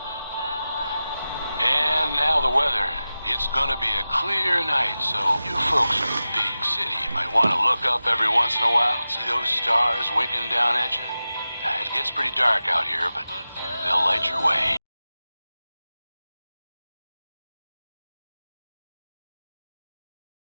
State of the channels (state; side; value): inverted; both; correlation -0.95